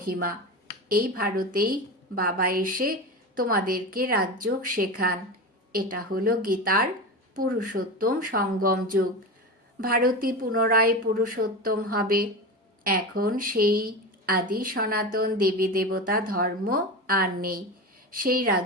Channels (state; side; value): normal; both; correlation 0.24